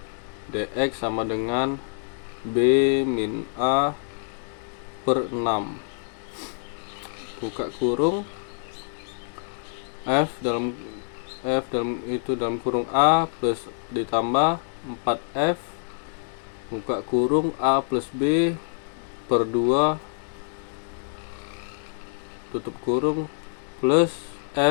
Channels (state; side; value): silent; right; digital silence